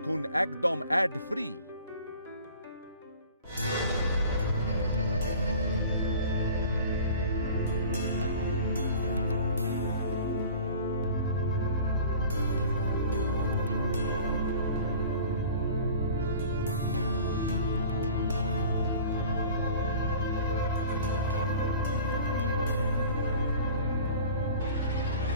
একদম add free.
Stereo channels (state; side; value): inverted; both; correlation -0.44